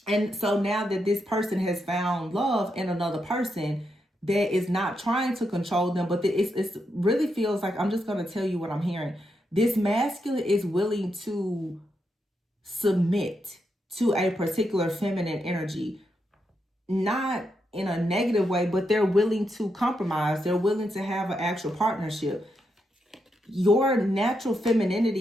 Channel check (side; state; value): both; normal; correlation 0.83